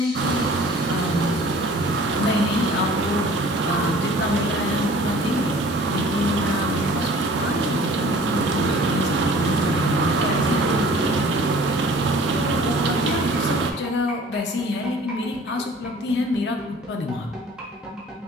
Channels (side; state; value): both; normal; correlation 0.48